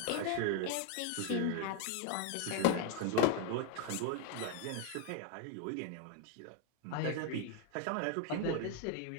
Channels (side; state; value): both; different; correlation 0.02